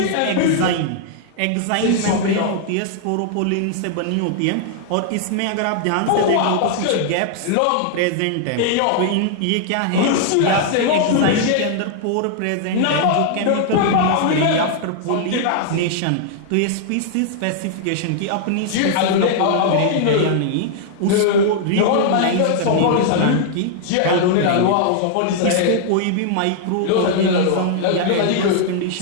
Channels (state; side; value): different; both; correlation -0.01